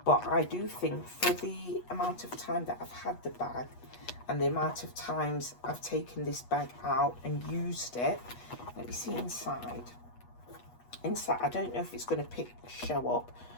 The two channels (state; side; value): late; right; 8.3 ms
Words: But I do think for the amount of time that I've had the bag and the amount of times I've taken this bag out and used it, let me see inside. Inside, I don't know if it's going to show up,